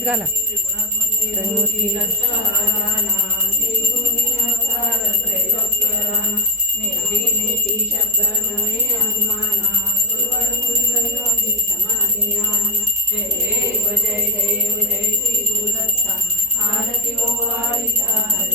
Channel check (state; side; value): normal; both; correlation 0.09